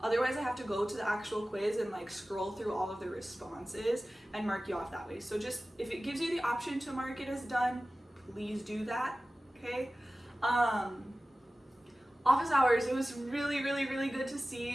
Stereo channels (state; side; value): normal; both; correlation 0.96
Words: Otherwise I have to go to the actual quiz and scroll through all of the responses and mark you off that way. So just, if it gives you the option to mark it as done, please do that, okay? Office hours, it was really good to